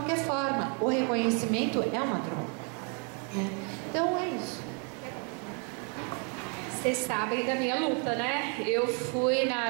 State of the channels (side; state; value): left; quieter; 38.2 dB